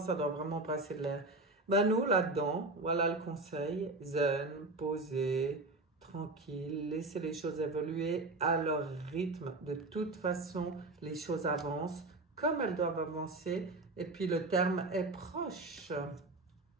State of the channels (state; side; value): quieter; left; 3.0 dB